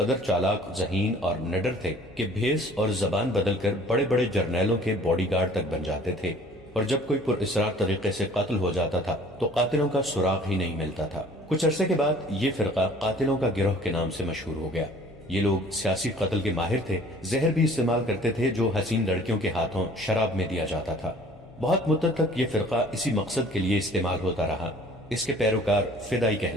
چالاک، ذہین اور نڈر تھے کہ بھیس اور زبان بدل کر بڑے بڑے جرنیلوں کے باڈی گارڈ تک بن جاتے تھے، اور جب کوئی پر اسرار طریقے سے قتل ہو جاتا تھا تو قاتلوں کا سراغ ہی نہیں ملتا تھا۔ کچھ عرصے کے بعد یہ فرقہ قاتلوں کا گروہ کے نام سے مشہور ہو گیا۔ یہ لوگ سیاسی قتل کے ماہر تھے، زہر بھی استعمال کرتے تھے جو حسین لڑکیوں کے ہاتھوں شراب میں دیا جاتا تھا۔ بہت مدت تک یہ فرقہ اسی مقصد کے لیے استعمال ہوتا رہا۔ اس کے پیروکار فدائی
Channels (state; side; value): noise; left; hum, 25 dB below the sound